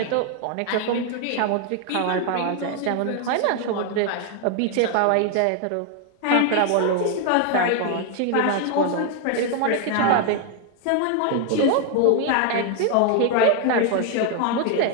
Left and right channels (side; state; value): both; different; correlation 0.00